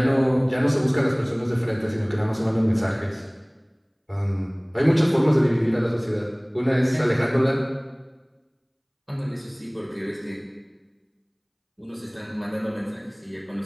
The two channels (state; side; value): identical; both; correlation 1.00